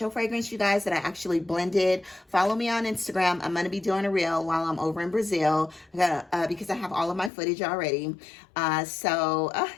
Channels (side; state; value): right; drops out; at 7.3 s